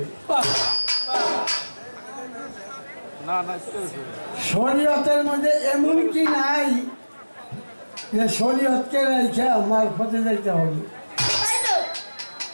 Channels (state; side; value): inverted; both; correlation -1.00